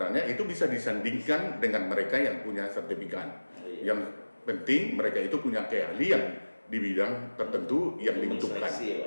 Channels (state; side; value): inverted; both; correlation -1.00